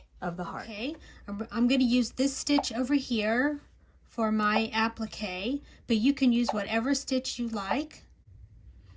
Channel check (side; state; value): both; identical; correlation 1.00